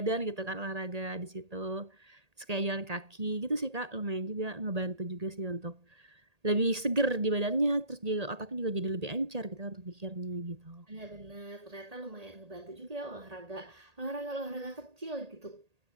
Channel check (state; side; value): late; left; 1.8 ms